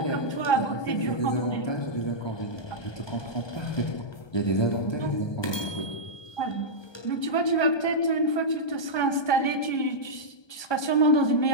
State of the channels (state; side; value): late; right; 1.2 ms